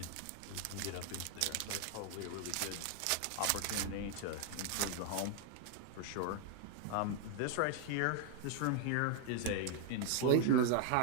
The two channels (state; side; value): different; both; correlation 0.00